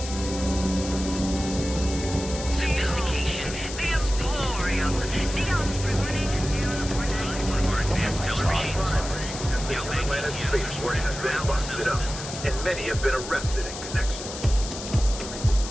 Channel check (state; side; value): noise; left; hiss, 9 dB below the sound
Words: Sophistication, the emporium, neon spring one of our advanced televisions. The planet spaceport has been busted up, and many have been arrested in connection.